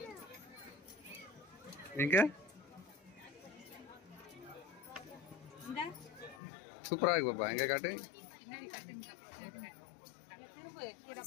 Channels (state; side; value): drops out; right; at 6.4 s